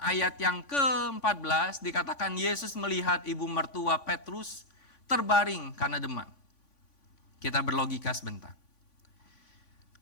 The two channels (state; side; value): late; right; 3.5 ms